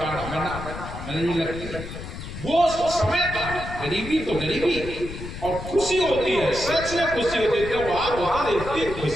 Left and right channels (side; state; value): left; noise; rumble, 10 dB below the sound